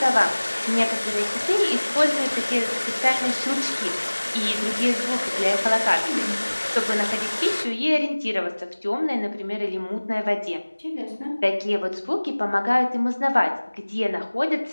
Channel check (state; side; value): inverted; both; correlation -1.00